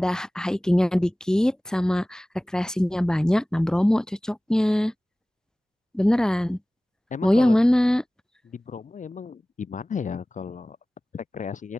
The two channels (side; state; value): both; normal; correlation 0.98